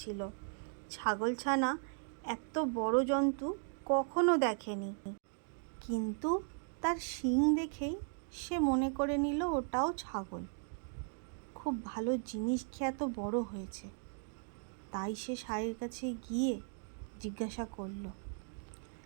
ছাগলছানা এত বড় জন্তু কখনো দেখেনি, কিন্তু তার শিং দেখেই সে মনে করে নিল ওটাও ছাগল। খুব ভালো জিনিস খেয়ে এত বড় হয়েছে। তাই সে ষাঁড়ের কাছে গিয়ে জিজ্ঞাসা করলো,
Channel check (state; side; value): silent; left; 53 dB below the other